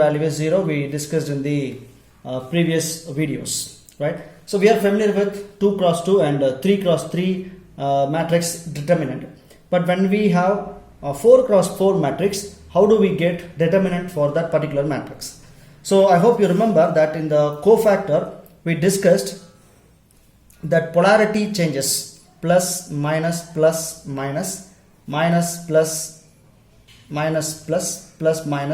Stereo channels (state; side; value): identical; both; correlation 1.00